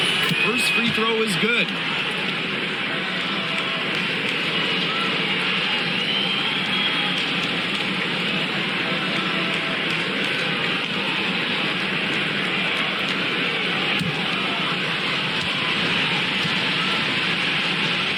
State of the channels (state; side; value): identical; both; correlation 1.00